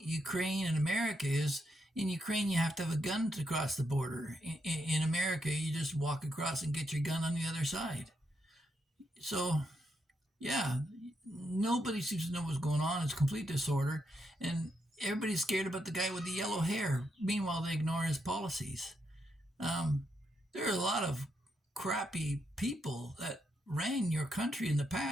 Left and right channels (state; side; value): normal; both; correlation 0.80